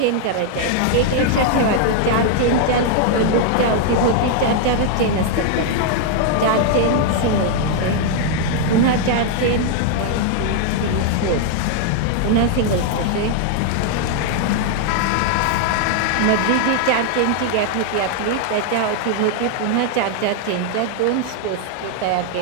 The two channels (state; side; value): different; both; correlation 0.00